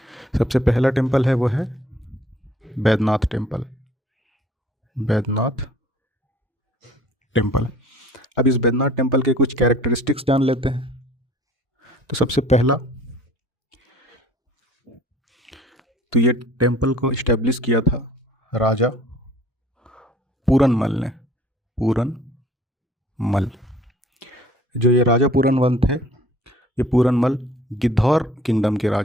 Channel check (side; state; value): both; normal; correlation 0.53